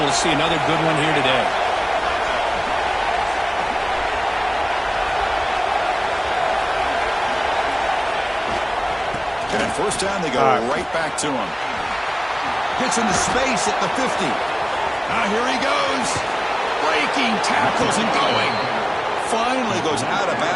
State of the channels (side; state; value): both; identical; correlation 1.00